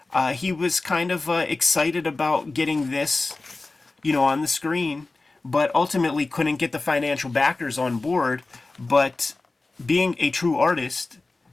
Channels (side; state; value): right; quieter; 3.4 dB